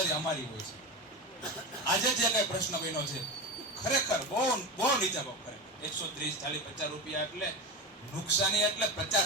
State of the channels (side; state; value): both; normal; correlation 0.22